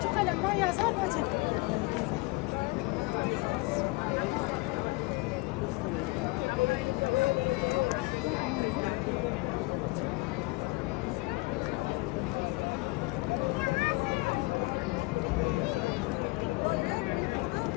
kalem var, yazar hacı.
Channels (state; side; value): quieter; right; 24.5 dB